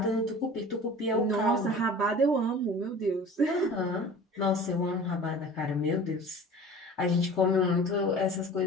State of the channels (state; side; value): normal; both; correlation 0.41